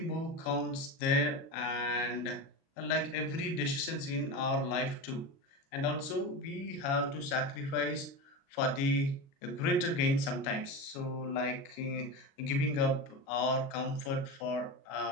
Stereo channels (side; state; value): right; late; 36 ms